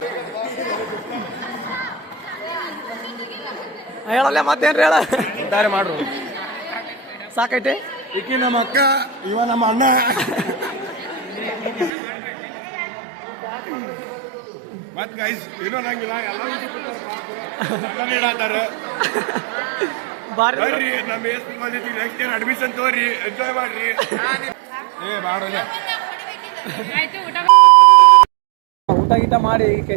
ಹೇಳಲ್ಲ ಮತ್ತೇನ್ರಿ ಹೇಳ ದಾರಿ ಮಾಡ್ರು. ಸಾಕೈತಿ. ಈಕಿ ನಮ್ಮ ಅಕ್ಕ, ಇವ ನಮ್ಮ ಅಣ್ಣ. ಮತ್ ಗೈಸ್ ಏನೋ ನಂಗಿಲ್ಲ ಎಲ್ಲ ಇಡಾತಾರ. ಬಾರಿ ಬರ್ರಿ ನಮ್ಮ ASP ಕಾಲೇಜಿಗೆ ನೆಕ್ಸ್ಟ್ ಇಯರ್ ಅಡ್ಮಿಷನ್ ತಗೋರಿ, ಎಂಜಾಯ್ ಮಾಡ್ರಿ. ಊಟ ಗೀಟ ಮಾಡಿ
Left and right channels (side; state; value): left; drops out; at 11.9 s